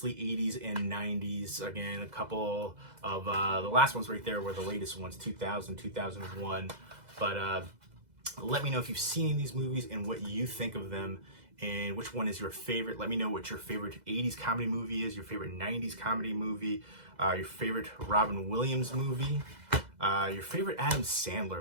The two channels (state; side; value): late; left; 2.0 ms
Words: 80s and 90s. Again, a couple of the last ones right there were the latest ones, 2000, 2001. But let me know if you've seen these movies and what you think of them, and which one is your favorite. Let me know what your favorite 80s comedy movie is, your favorite 90s comedy movie, your favorite Robin Williams movie, your favorite Adam